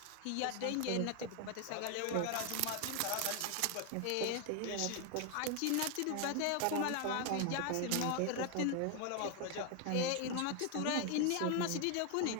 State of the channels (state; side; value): different; both; correlation 0.01